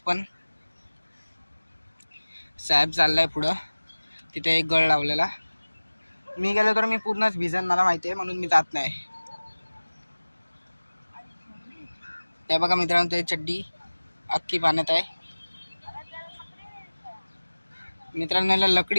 पण. साहेब चाललाय पुढं, तिथे एक गळ लावलेला. मी गेलो तर मी पूर्णच भिजन, मला माहिती आहे, म्हणून मी जात नाही. ते बघा मित्रांनो, ते चड्डी अख्खी पाण्यात आहे. मित्रांनो याला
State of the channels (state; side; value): inverted; both; correlation -1.00